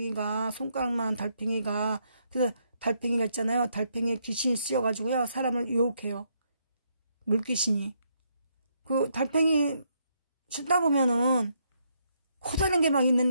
손가락만한 달팽이가. 그래서 달팽이가 있잖아요. 달팽이에 귀신이 씌어가지고요. 사람을 유혹해요. 물귀신이. 그 달팽이 씻다 보면은 커다란 게 막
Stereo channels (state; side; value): inverted; both; correlation -0.75